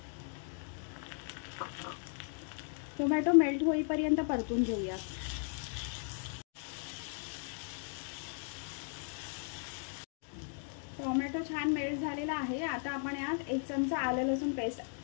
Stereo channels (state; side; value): silent; right; 53 dB below the other